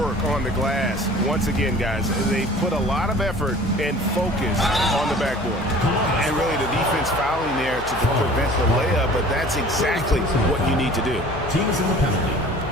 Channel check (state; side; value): noise; left; hum, 13 dB below the sound